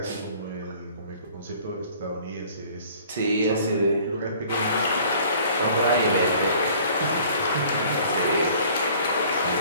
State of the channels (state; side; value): inverted; both; correlation -0.52